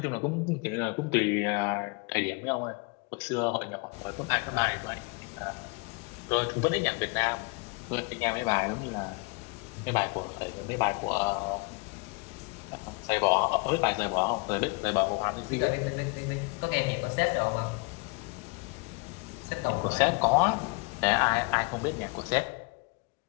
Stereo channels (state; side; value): quieter; right; 30.5 dB